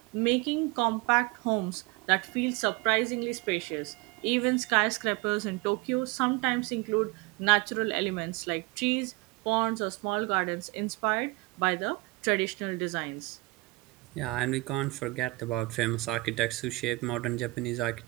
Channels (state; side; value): quieter; left; 24.1 dB